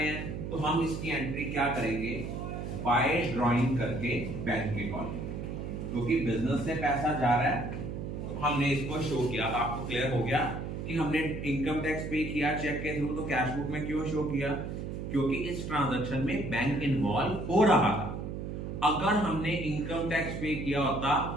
हैं, तो हम इसकी एंट्री क्या करेंगे? बाय ड्राइंग करके बैंक के कॉलम, क्योंकि बिजनेस से पैसा जा रहा है तो हमने इसको शो किया। आपको क्लियर हो गया कि हमने इनकम टैक्स पे किया चेक के थ्रू, तो कैश बुक में क्यों शो किया? क्योंकि इस ट्रांजैक्शन में बैंक इन्वॉल्व हो रहा था। अगर हमने इनकम टैक्स पे किया होता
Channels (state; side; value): noise; right; hum, 6 dB below the sound